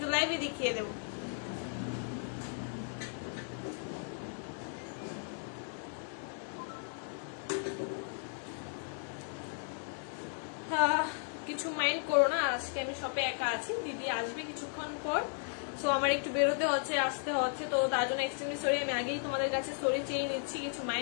লাইভে দেখিয়ে দেবো। কিছু মাইন্ড করো না, আজকে আমি শপে একা আছি, দিদি আসবে কিছুক্ষণ পর, সো আমার একটু বেরোতে হচ্ছে, আসতে হচ্ছে, তো তার জন্য এক্সট্রিমলি সরি। আমি আগেই তোমাদের কাছে সরি চেয়ে নিচ্ছি, কিছু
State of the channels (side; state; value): right; silent; 54 dB below the other